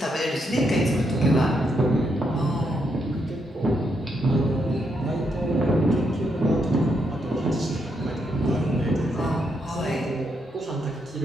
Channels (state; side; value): normal; both; correlation 0.79